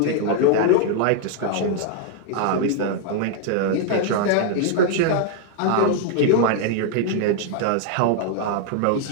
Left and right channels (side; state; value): both; different; correlation 0.00